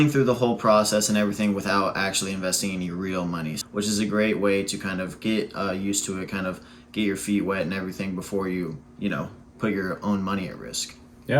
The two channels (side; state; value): both; identical; correlation 1.00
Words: through the whole process and everything without actually investing any real money, which is a great way to kind of get used to it, kind of get your feet wet and everything before you, put your own money at risk.